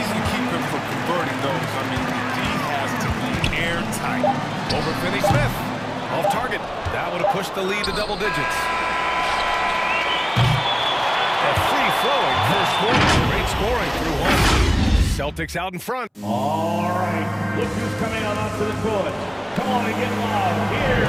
to keep him from converting those. I mean, the D has to be airtight. Over Finney Smith. Off target. That would have pushed the lead to double digits. A free-flowing first quarter. Great scoring through 1. Celtics out in front. All right. Look who's coming on onto the court. Come on and get loud. Here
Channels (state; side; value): identical; both; correlation 1.00